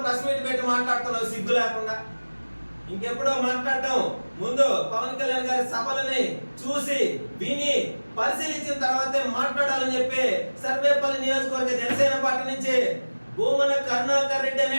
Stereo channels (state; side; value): inverted; both; correlation -1.00